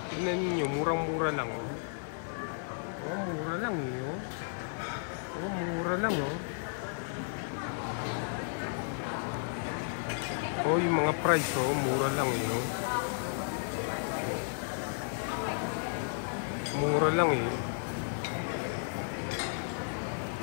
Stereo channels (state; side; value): silent; right; digital silence